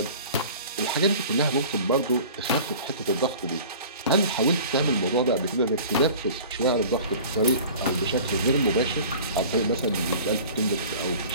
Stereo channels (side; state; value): both; inverted; correlation -0.43